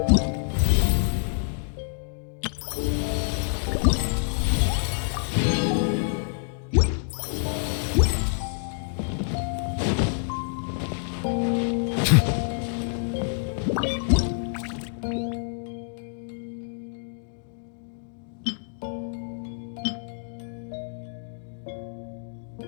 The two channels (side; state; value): right; silent; digital silence